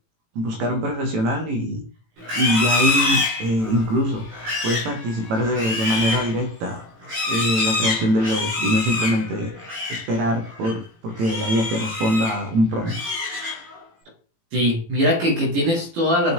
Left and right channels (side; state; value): left; late; 18 ms